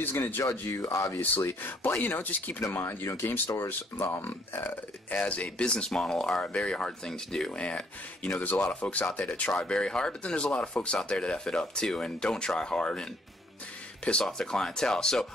going to judge you, obviously, but, you know, just keep it in mind, you know, game stores as a business model are a very hard thing to do. And, you know, there's a lot of folks out there that try very hard, but then there's a lot of folks out there that F it up too and don't try hard and piss off their clientele. So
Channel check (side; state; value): both; normal; correlation 0.64